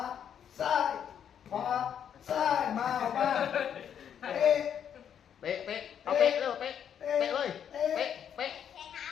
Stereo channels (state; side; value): quieter; right; 8.7 dB